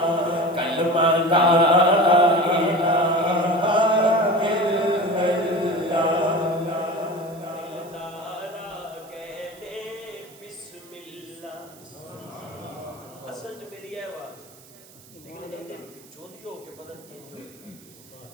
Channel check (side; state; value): right; noise; hiss, 23 dB below the sound